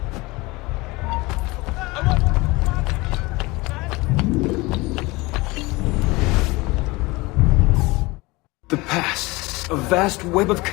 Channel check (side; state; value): right; quieter; 23.0 dB